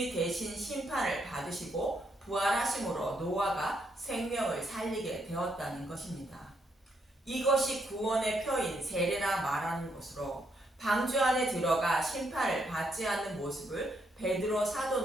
대신 심판을 받으시고 부활하심으로 노아가 생명을 살리게 되었다는 것입니다. 이것이 구원의 표인 세례라 말하는 것으로, 방주 안에 들어가 심판을 받지 않는 모습을 베드로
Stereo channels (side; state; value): both; normal; correlation 0.76